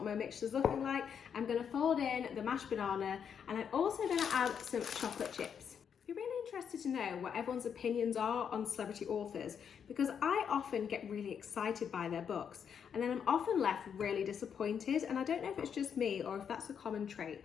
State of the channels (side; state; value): right; quieter; 7.5 dB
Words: my mixture's looking like. I'm gonna fold in the mashed banana, and I'm also gonna add some chocolate chips. I'd be really interested to know what everyone's opinions are on celebrity authors, because I often get really excited by their books, and then I'm often left really disappointed, and I don't know if it's just me or if that's a common trait.